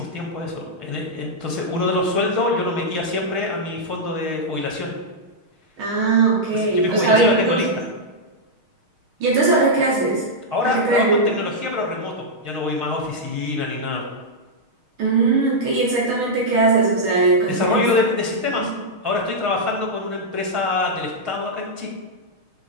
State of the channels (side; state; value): left; late; 6.4 ms